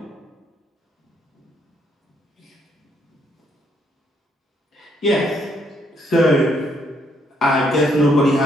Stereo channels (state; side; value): normal; both; correlation 0.72